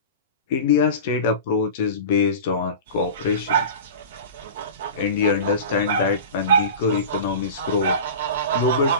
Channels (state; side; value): inverted; both; correlation -0.32